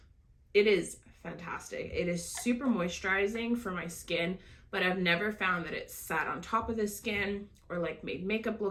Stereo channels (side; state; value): both; identical; correlation 1.00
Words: it is fantastic. It is super moisturizing for my skin, but I've never found that it sat on top of the skin or like made makeup